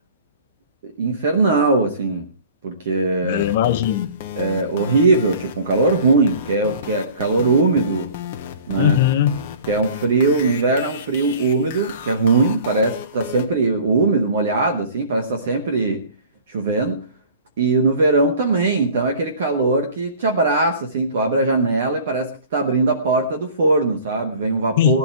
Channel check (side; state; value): both; inverted; correlation -0.45